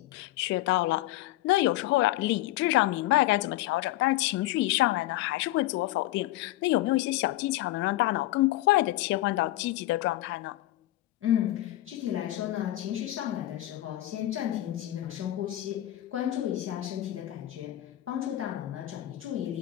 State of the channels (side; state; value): right; quieter; 16.1 dB